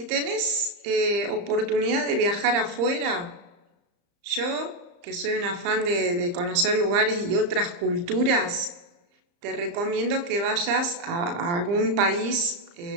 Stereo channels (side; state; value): left; late; 34 ms